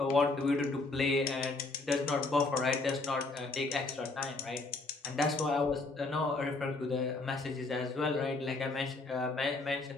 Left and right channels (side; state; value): right; quieter; 3.4 dB